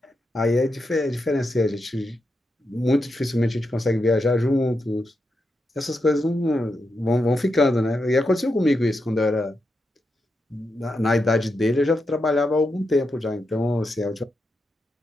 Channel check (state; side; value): normal; both; correlation 0.86